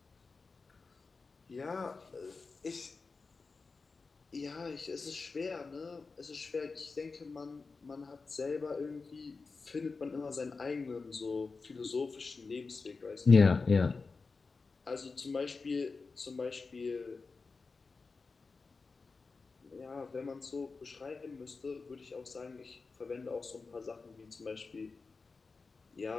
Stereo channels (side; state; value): right; quieter; 4.3 dB